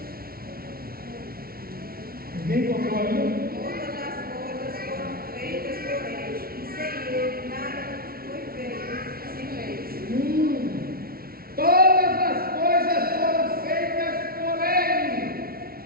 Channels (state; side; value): late; left; 0.44 ms